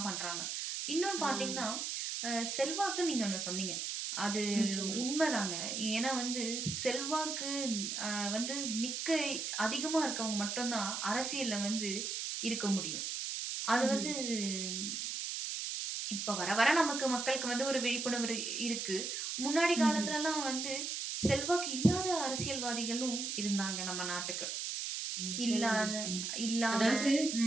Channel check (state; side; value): noise; right; hiss, 3 dB below the sound